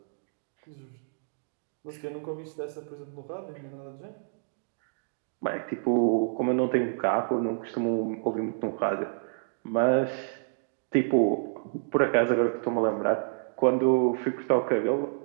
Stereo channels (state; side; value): silent; left; digital silence